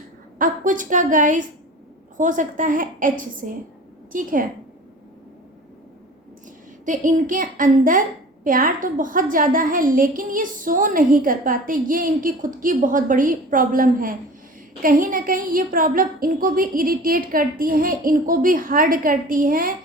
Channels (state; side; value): normal; both; correlation 0.40